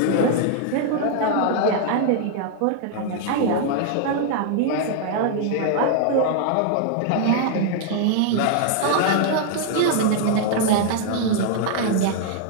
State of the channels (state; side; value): different; both; correlation -0.01